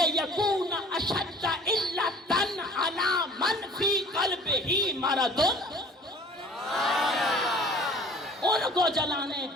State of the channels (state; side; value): normal; both; correlation 0.48